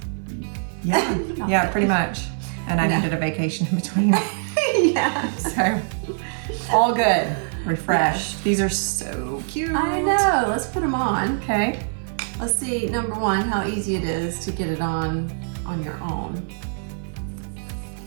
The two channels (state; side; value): silent; left; 55 dB below the other